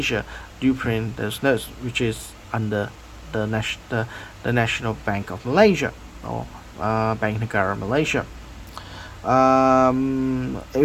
do print those notes, which is under the National Bank of Malaysia, or Bank Negara Malaysia.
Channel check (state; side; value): identical; both; correlation 1.00